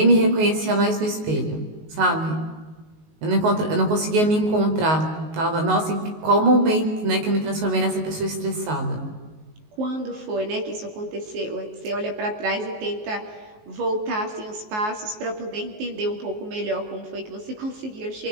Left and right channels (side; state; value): left; late; 19 ms